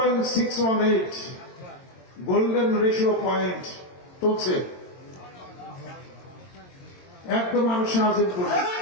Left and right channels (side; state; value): right; late; 22 ms